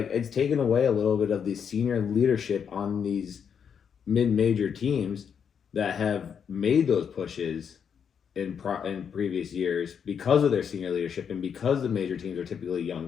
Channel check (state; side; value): quieter; right; 7.3 dB